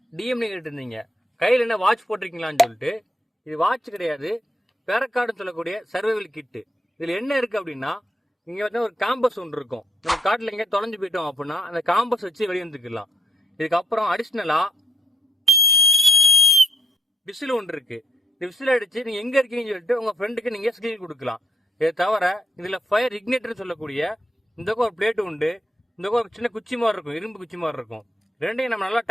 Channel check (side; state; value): both; normal; correlation 0.74